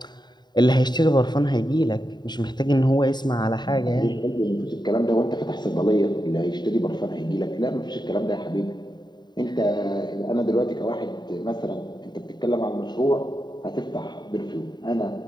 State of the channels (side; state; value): right; late; 0.21 ms